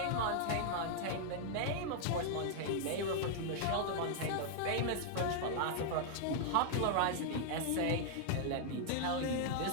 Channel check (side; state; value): both; different; correlation -0.01